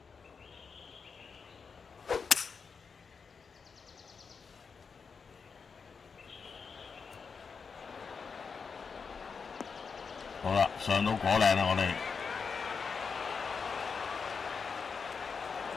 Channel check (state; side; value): quieter; right; 5.5 dB